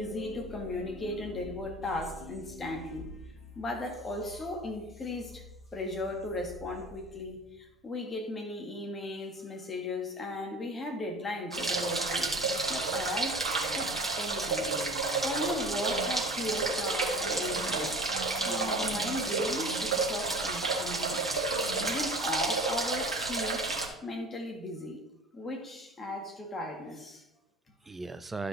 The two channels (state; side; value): normal; both; correlation 0.41